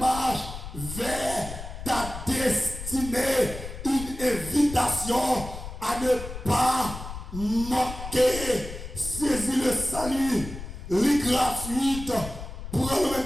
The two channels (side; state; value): left; noise; rumble, 10 dB below the sound